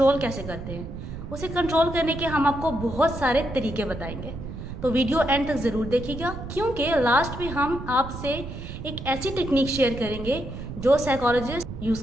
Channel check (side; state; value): right; noise; rumble, 9 dB below the sound